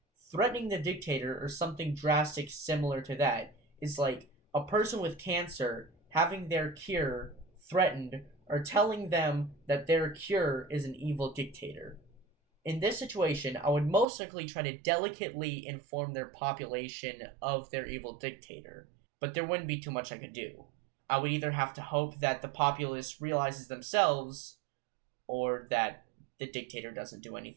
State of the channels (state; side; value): drops out; left; at 14.1 s